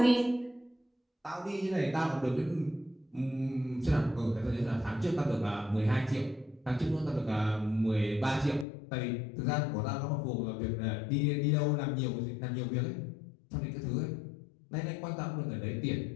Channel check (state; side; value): drops out; right; at 8.7 s